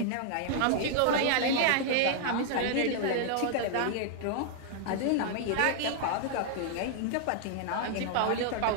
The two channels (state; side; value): different; both; correlation 0.00